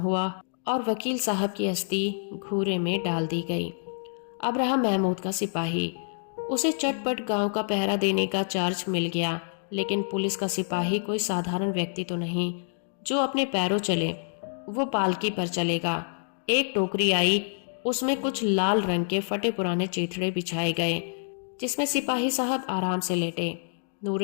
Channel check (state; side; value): silent; right; digital silence